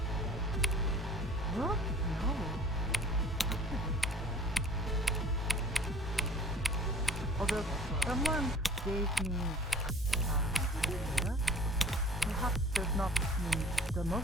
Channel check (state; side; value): normal; both; correlation 0.47